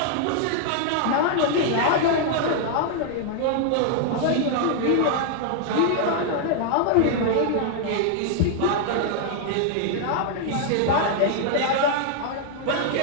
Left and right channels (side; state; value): both; different; correlation 0.00